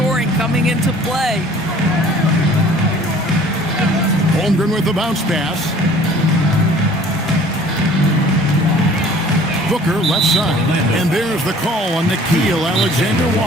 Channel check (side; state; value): both; normal; correlation 0.51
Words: coming into play. Holmgren with the bounce pass. Booker left side. And there's the call on Nickeil